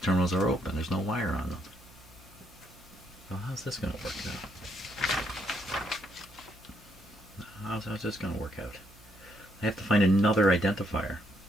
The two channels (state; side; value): normal; both; correlation 0.74